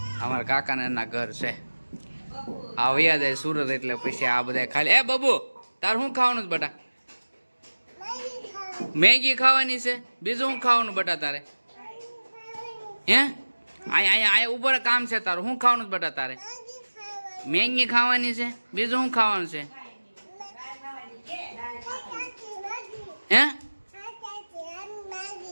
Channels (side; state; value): both; inverted; correlation -1.00